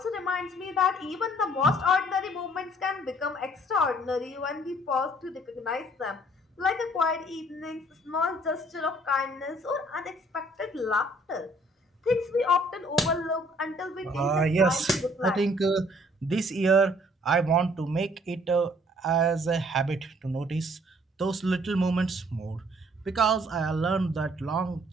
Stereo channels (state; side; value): normal; both; correlation 0.60